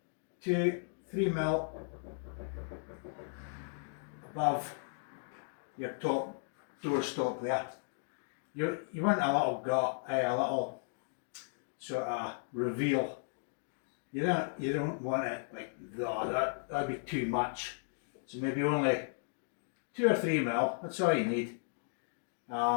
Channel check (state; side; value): silent; right; digital silence